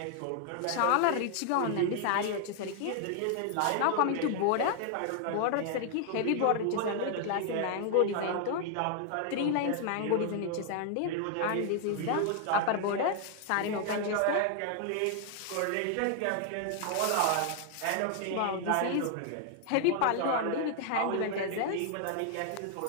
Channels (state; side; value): different; both; correlation 0.00